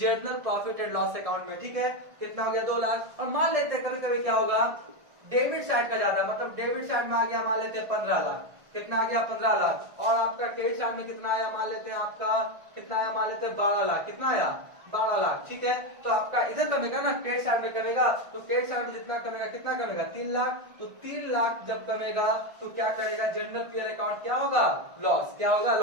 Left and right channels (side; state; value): left; late; 1.5 ms